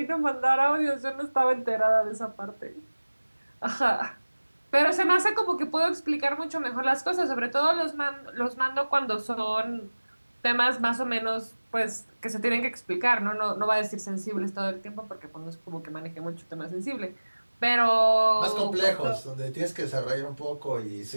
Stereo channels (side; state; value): both; inverted; correlation -1.00